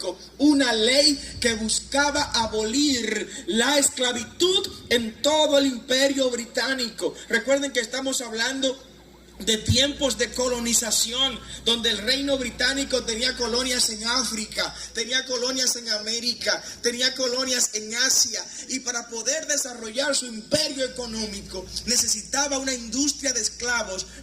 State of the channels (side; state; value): both; identical; correlation 1.00